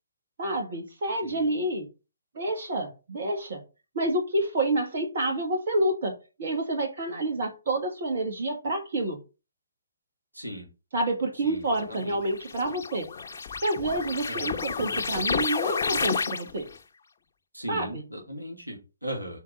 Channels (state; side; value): inverted; both; correlation -0.58